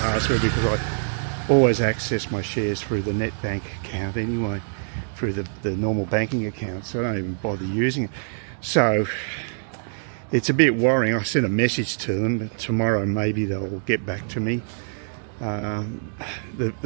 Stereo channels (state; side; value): silent; left; digital silence